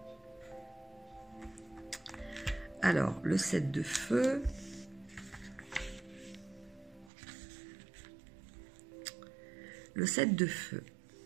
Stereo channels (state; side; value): drops out; left; at 7.1 s